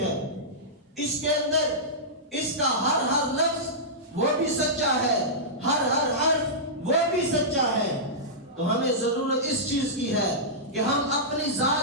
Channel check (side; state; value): both; normal; correlation -0.14